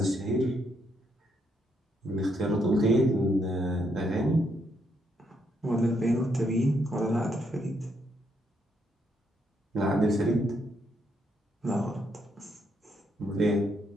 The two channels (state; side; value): normal; both; correlation 0.76